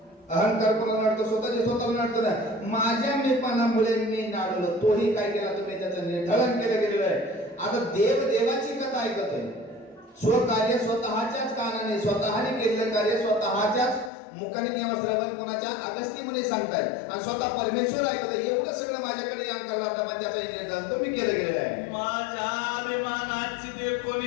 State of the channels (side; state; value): right; drops out; at 14.1 s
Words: अहंकार कोणाला नडतो, स्वतःचे स्वतःला नडतो ना. माझ्या मीपणामुळे मी नाडलो, तोही काय केला तुम्ही त्याचं निर्धारण केलं गेलेलं आहे. आता देवाची कथा ऐकतोय, स्वकार्य स्वतःच्याच कानाने स्वतःने केलेलं कार्य स्वतःच्याच मुखाने किंवा श्रवण कोणाच्या अगस्ती मुनी सांगतायत आणि स्वतः परमेश्वर ऐकतोय. एवढं सगळं माझ्याकडे यान करला होता, पण त्याचा निर्धारण तुम्ही केलं गेलेलं आहे. माझ्या अभिमानाची ते